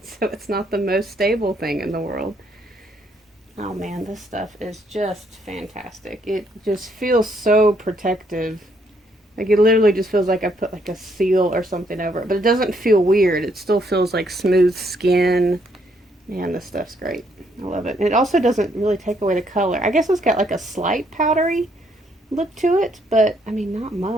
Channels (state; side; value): normal; both; correlation 0.71